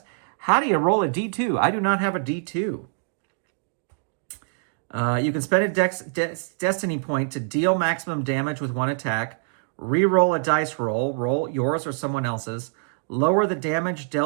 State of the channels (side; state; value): left; silent; digital silence